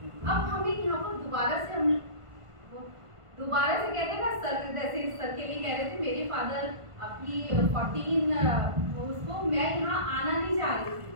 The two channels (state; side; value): late; left; 1.5 ms